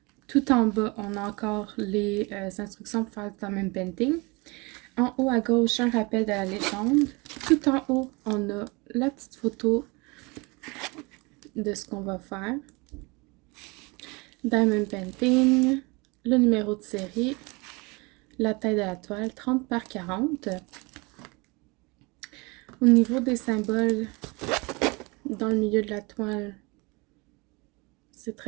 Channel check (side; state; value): left; quieter; 26.9 dB